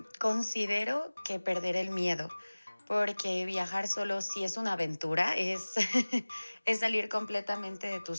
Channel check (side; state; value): both; inverted; correlation -1.00